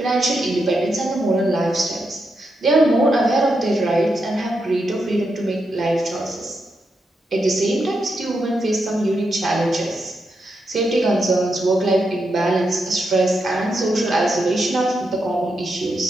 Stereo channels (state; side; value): normal; both; correlation 0.84